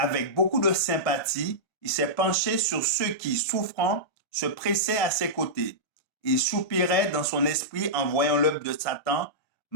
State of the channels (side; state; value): right; late; 1.7 ms